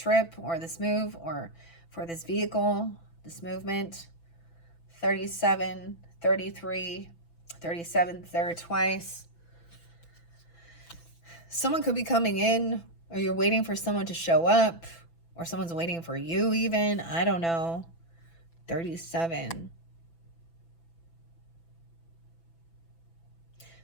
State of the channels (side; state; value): right; late; 6.0 ms